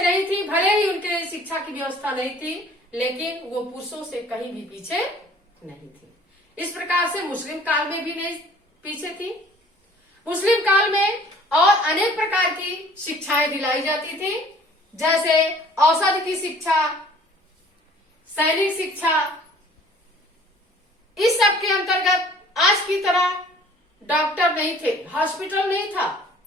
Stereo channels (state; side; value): normal; both; correlation 0.52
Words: नहीं थी, भले ही उनके लिए शिक्षा की व्यवस्था नहीं थी, लेकिन वो पुरुषों से कहीं भी पीछे नहीं थी। इस प्रकार से मुस्लिम काल में भी नहीं पीछे थी। मुस्लिम काल में और अनेक प्रकार की शिक्षाएं दिलाई जाती थी, जैसे औषध की शिक्षा, सैनिक शिक्षा। इस सब के अंतर्गत आज की तरह डॉक्टर नहीं थे, हॉस्पिटल नहीं था।